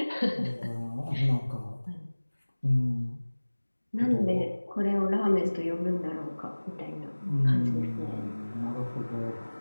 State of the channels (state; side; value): inverted; both; correlation -1.00